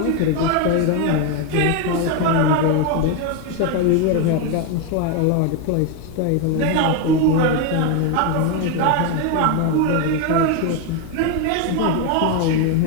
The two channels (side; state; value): both; different; correlation 0.02